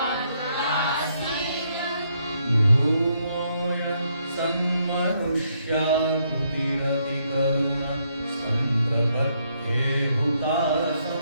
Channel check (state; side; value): inverted; both; correlation -0.74